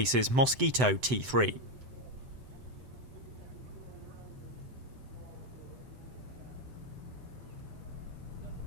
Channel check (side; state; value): left; late; 7.9 ms